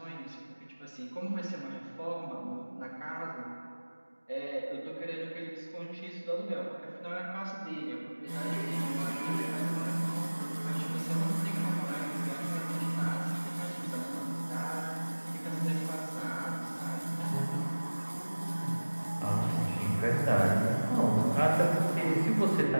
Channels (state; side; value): inverted; both; correlation -1.00